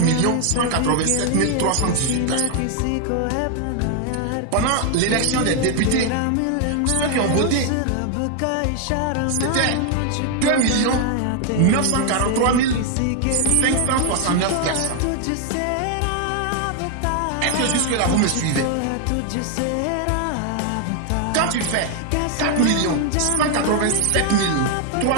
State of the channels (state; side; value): different; both; correlation 0.00